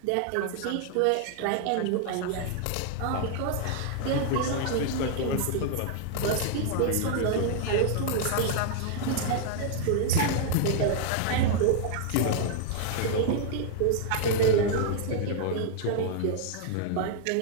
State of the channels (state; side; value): different; both; correlation 0.00